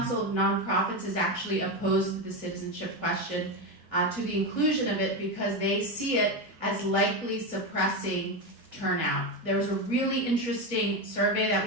of Nonprofits is actually opposed to the citizenship question, to the inclusion of it, because they see it as likely suppressing turnout. There was a really interesting survey that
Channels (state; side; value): normal; both; correlation 0.13